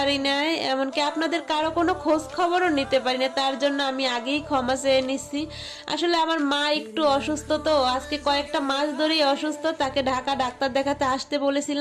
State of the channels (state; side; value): identical; both; correlation 1.00